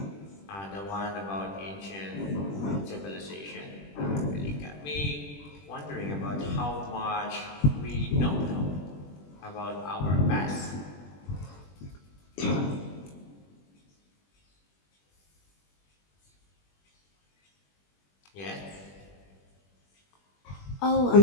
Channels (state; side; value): late; right; 20 ms